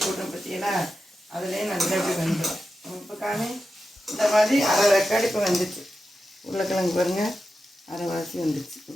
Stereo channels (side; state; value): both; normal; correlation 0.90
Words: போட்டோம் பார்த்தீங்கன்னா அதுலேயே நல்லா இப்படி வந்துடும். இப்போ காமி இந்த மாதிரி அரை ரெக்கார்டு இப்போ வந்துச்சு. உருளைக்கிழங்கு பாருங்கள் அரைவாசி வந்துச்சு